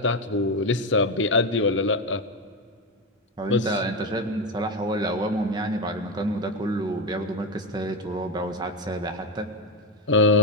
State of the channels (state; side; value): normal; both; correlation 0.12